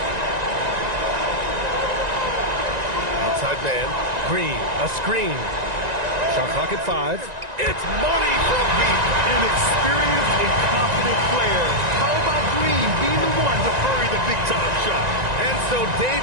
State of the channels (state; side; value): late; left; 1.9 ms